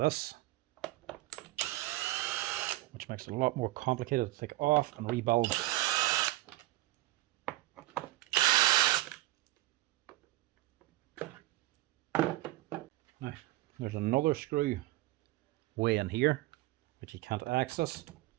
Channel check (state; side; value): quieter; left; 17.8 dB